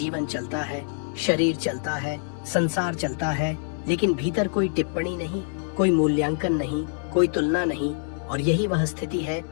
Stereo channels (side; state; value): right; silent; digital silence